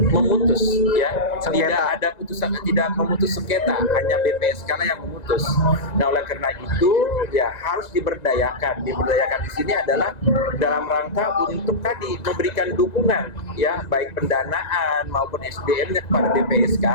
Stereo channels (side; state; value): right; late; 1.9 ms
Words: ya, tidak ada putusan, tidak memutus sengketa, hanya BPSK lah yang memutus. Nah, oleh karena itu ya harus diberdayakan. Diberdayakan di sini adalah dalam rangka untuk tadi memberikan dukungan ya, baik pendanaan maupun SDM-nya kepada BPSK,